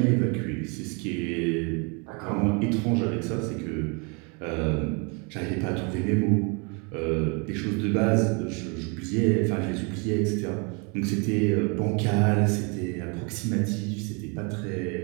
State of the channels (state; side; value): quieter; left; 33.2 dB